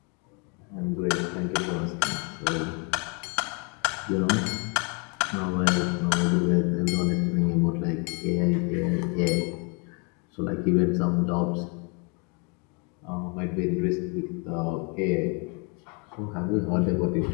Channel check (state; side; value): quieter; right; 34.3 dB